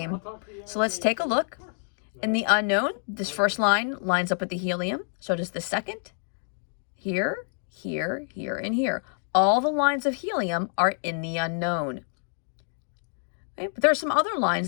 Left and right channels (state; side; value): silent; right; digital silence